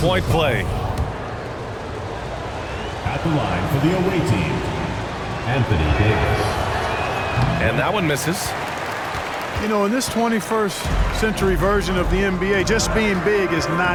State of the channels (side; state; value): both; identical; correlation 1.00